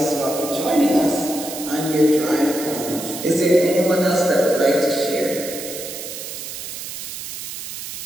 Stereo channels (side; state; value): right; noise; hiss, 9 dB below the sound